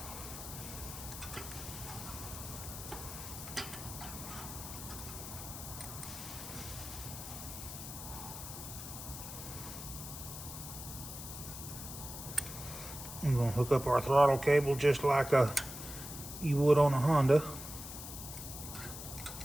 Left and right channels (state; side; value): noise; left; hiss, 9 dB below the sound